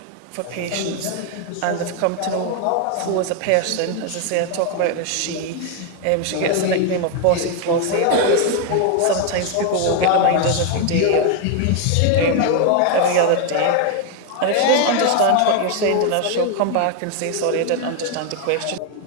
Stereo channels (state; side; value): different; both; correlation 0.01